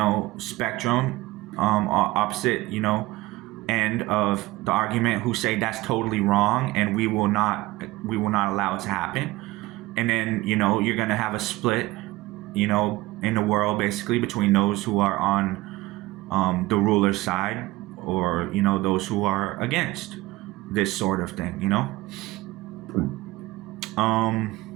spectrum, opposite, end of the argument, who say that's totally wrong and we will not allow it to happen. And then, you're going to have a split, in the world, basically, between those who are on the ruler's side, or those who are against this sort of thing.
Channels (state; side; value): quieter; left; 19.4 dB